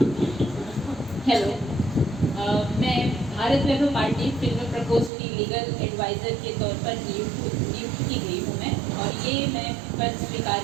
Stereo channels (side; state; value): left; drops out; at 5.1 s